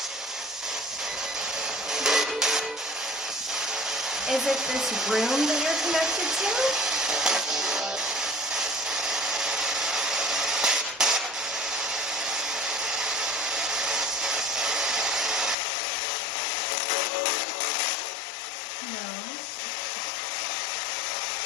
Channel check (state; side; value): drops out; right; at 15.6 s